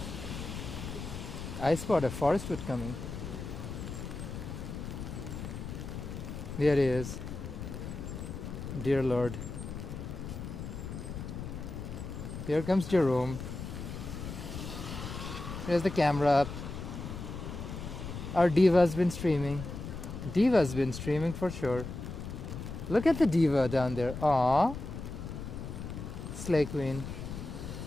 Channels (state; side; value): noise; left; rumble, 8 dB below the sound